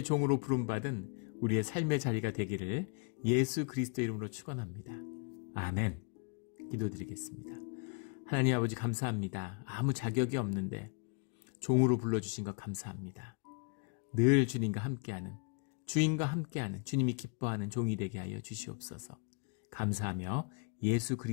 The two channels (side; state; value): right; quieter; 34.0 dB